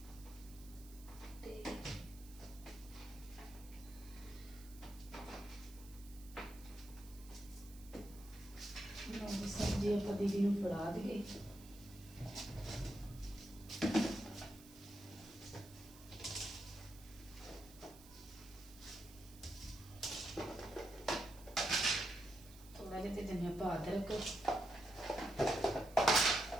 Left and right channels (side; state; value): right; noise; hiss, 20 dB below the sound